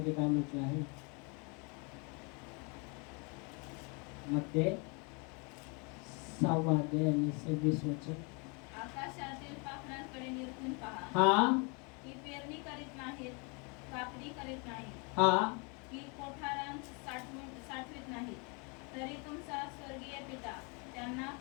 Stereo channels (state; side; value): quieter; right; 33.0 dB